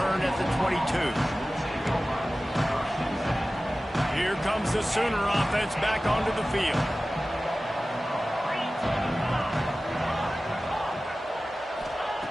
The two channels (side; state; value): both; normal; correlation 0.96